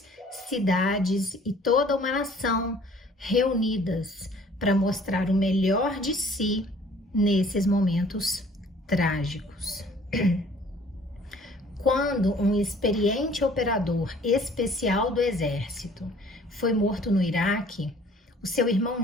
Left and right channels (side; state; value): both; normal; correlation 0.54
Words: cidades e toda uma nação reunidas para mostrar o melhor de si nesses momentos trágicos. Quando um experiente operador especial do exército foi morto no Iraque, o seu irmão